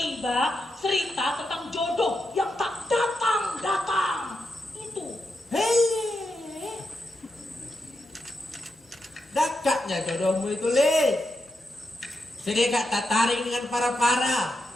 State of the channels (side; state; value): both; normal; correlation 0.86